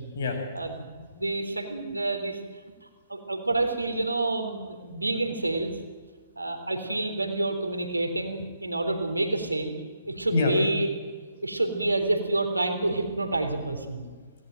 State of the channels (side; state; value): both; inverted; correlation -0.82